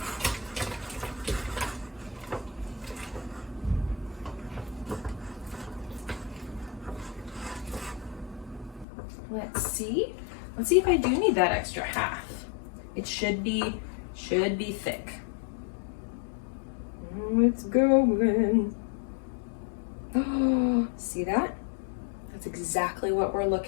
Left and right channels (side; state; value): right; drops out; at 8.8 s